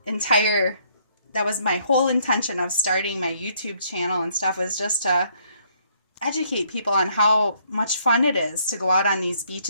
whole intention of starting my YouTube channel and stuff, was just to educate people on how much fun it is to go out on these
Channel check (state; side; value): inverted; both; correlation -0.67